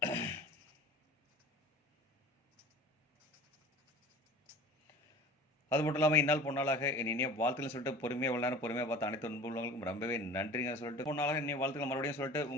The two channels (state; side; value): normal; both; correlation 0.40